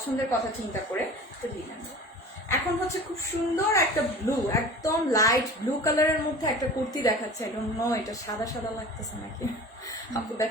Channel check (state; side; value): normal; both; correlation 0.39